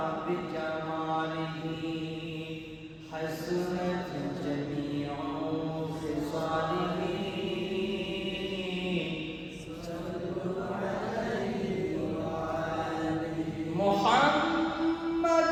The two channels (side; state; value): both; identical; correlation 1.00